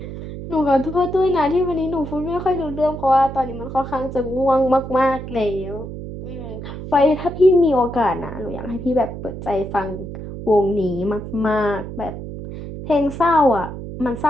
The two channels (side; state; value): right; noise; hum, 9 dB below the sound